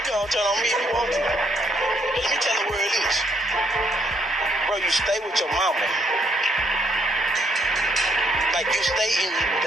gonna turn on me if you want to. But let me tell you where it is. Bro, you stay with your mama. Like you stay in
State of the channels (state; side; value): normal; both; correlation 0.71